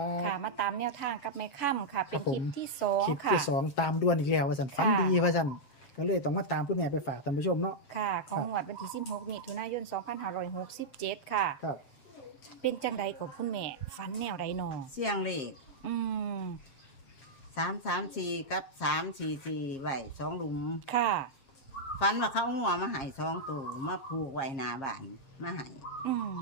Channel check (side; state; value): right; late; 7.4 ms